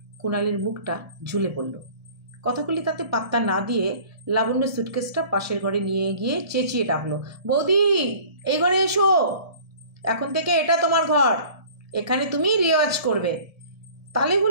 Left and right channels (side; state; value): left; late; 1.7 ms